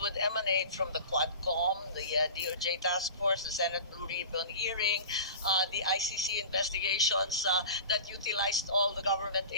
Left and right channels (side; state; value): both; inverted; correlation -0.34